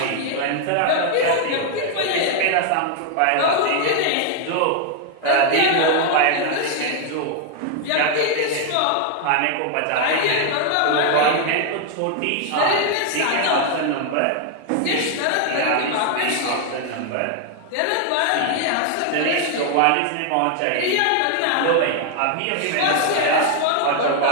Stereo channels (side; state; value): both; different; correlation 0.00